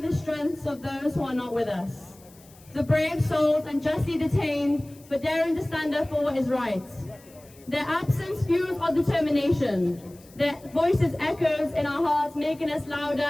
strengths of those who are not with us. The brave souls unjustly detained for daring to stand up for what is right. Their absence fuels our determination. Their voices echoes in our hearts, making us louder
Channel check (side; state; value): left; noise; hiss, 25 dB below the sound